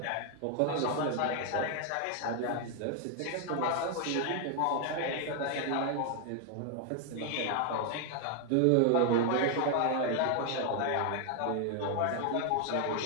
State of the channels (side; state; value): both; different; correlation 0.00